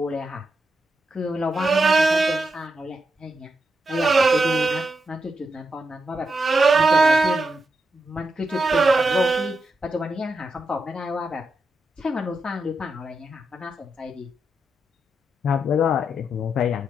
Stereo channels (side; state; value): both; normal; correlation 0.85